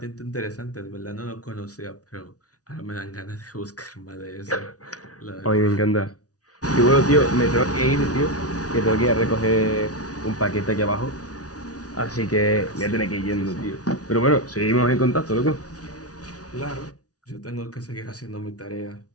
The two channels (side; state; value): right; late; 0.68 ms